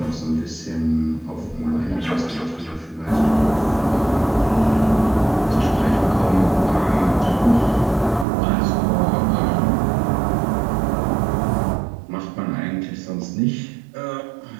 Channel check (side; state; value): left; drops out; at 8.2 s